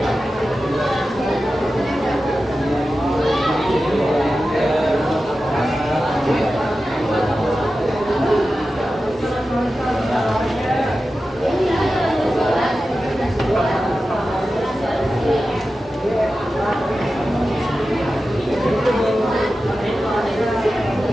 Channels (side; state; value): both; normal; correlation 0.93